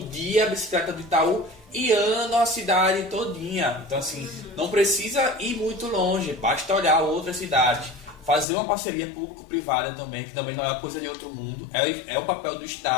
a bicicleta do Itaú e andam a cidade todinha. Então assim, não precisa ir muito longe, basta olhar outras cidades. Fazer uma parceria público-privada também, que também não é uma coisa de outro mundo, é o papel do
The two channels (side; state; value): right; drops out; at 8.5 s